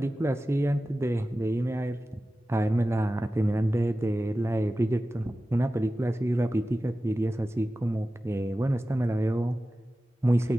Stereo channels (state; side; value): normal; both; correlation 0.95